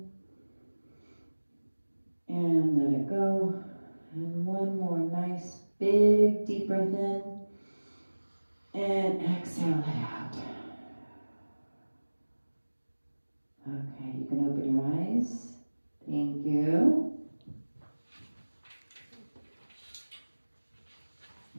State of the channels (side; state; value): both; inverted; correlation -1.00